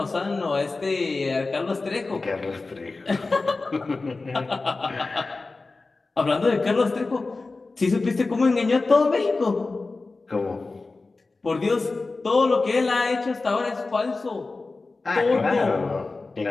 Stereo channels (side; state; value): right; quieter; 3.6 dB